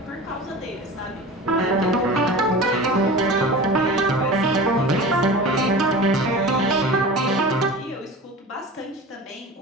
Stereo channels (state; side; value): normal; both; correlation 0.34